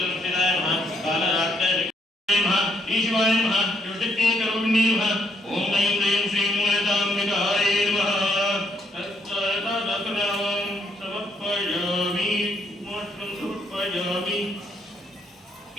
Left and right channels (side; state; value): both; normal; correlation 0.72